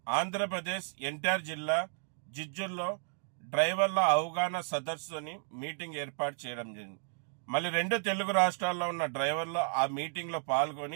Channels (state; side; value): silent; left; digital silence